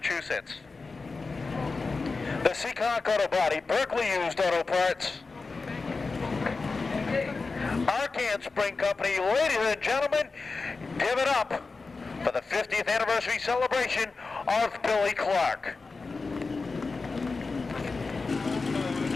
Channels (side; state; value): right; quieter; 4.1 dB